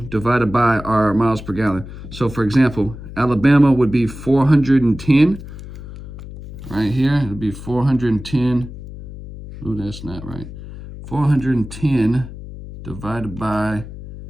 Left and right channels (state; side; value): noise; left; hum, 13 dB below the sound